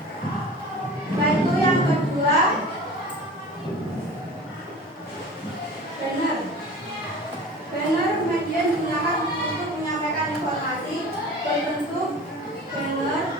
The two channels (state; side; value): normal; both; correlation 0.38